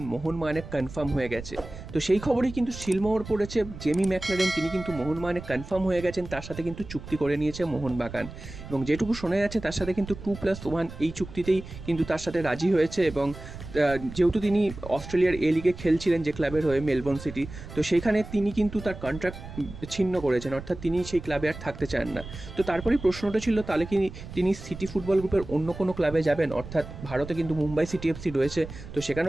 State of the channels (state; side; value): noise; right; rumble, 13 dB below the sound